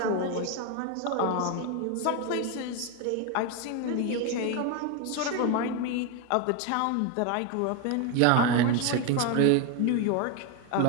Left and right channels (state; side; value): different; both; correlation 0.02